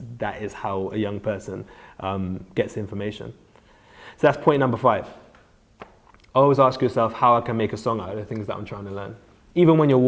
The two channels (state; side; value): identical; both; correlation 1.00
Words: that is how a young person gets information. So that's point number 5. Always ask yourself how I can make a song out of the things that I'm trying to learn. Even when you're